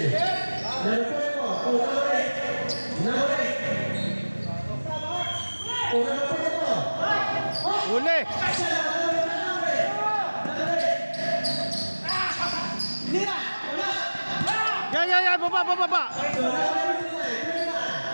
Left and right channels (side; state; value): both; inverted; correlation -1.00